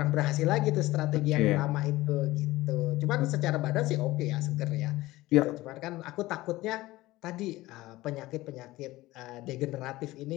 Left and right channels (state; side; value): quieter; right; 18.2 dB